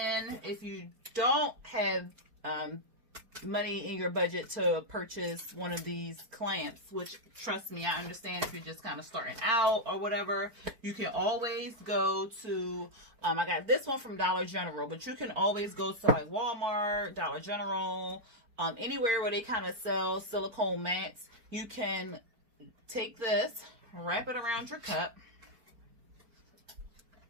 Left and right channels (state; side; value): late; left; 4.4 ms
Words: if you don't have money in your budget to purchase one of these clamps, which, trust me, I understand if you're just kind of starting out or whatever, you can always go to, I got this one from Dollar General, but you can always go to like Walmart, Dollar General, anywhere where they kind of sell silicone mats. You can take this, wrap it around your cup